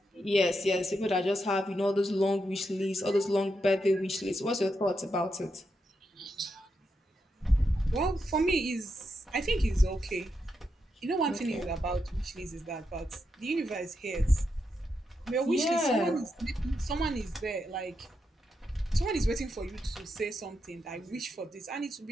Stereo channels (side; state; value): both; normal; correlation 0.84